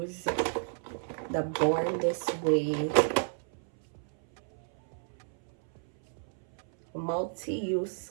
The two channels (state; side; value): silent; left; 57 dB below the other